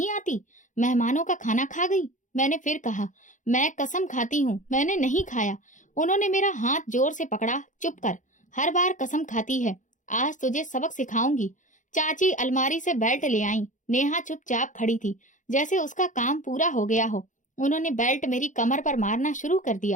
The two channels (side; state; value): right; late; 0.37 ms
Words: आती? मेहमानों का खाना खा गई। मैंने फिर कहा, मैं कसम खाती हूँ मैंने नहीं खाया। उन्होंने मेरा हाथ जोर से पकड़ा। चुप कर, हर बार कसम खाती है। आज तुझे सबक सिखाऊंगी। चाची अलमारी से बेल्ट ले आई। नेहा चुपचाप खड़ी थी, जैसे उसका काम पूरा हो गया हो। उन्होंने बेल्ट मेरी कमर पर मारना शुरू कर